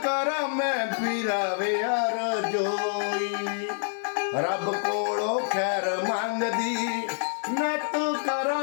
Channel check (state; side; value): silent; right; digital silence